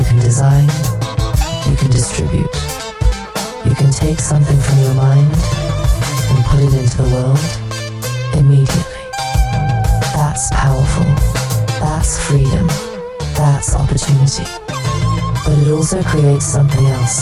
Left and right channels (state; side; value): identical; both; correlation 1.00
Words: can design, you can distribute. You can take something from your mind and put it into the world immediately. That's powerful. That's freedom. That's opportunity. But it also creates something